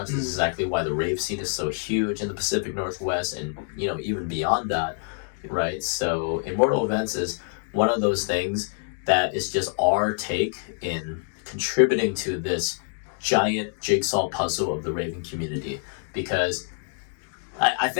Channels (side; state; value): right; silent; 61 dB below the other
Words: This is exactly why the rave scene is so huge in the Pacific Northwest and, even beyond that, right? So Immortal Events is one of those things that is just our take in contributing to this giant jigsaw puzzle of the raving community. Because I